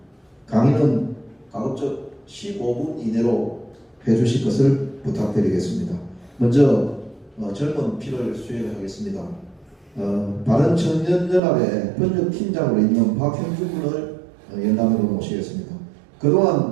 강의는 가급적 15분 이내로 해주실 것을 부탁드리겠습니다. 먼저 젊은 피를 수행하겠습니다. 바른청년연합의 번역팀장으로 있는 박형준 군을 연단으로 모시겠습니다.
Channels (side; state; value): left; drops out; at 11.4 s